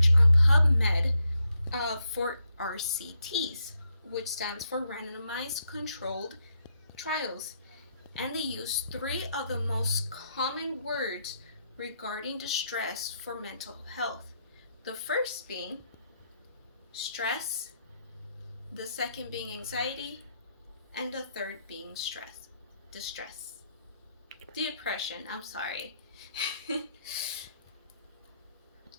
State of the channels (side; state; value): both; inverted; correlation -0.78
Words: on PubMed for RCTs, which stands for Randomized Controlled Trials. And they used three of the most common words regarding distress for mental health. The first being stress, the second being anxiety, and the third being depression, I'm sorry.